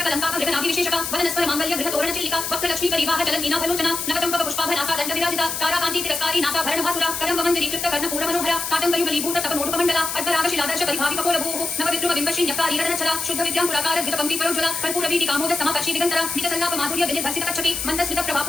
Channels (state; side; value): noise; left; hiss, 4 dB below the sound